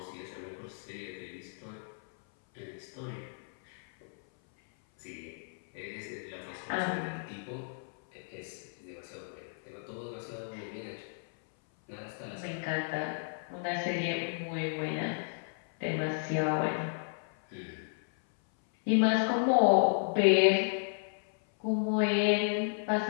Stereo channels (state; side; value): silent; right; 56 dB below the other